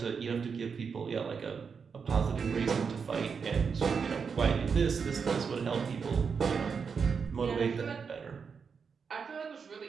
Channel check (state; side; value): quieter; left; 5.9 dB